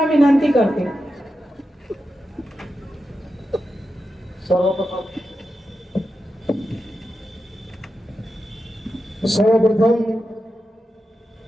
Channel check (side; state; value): both; normal; correlation 0.89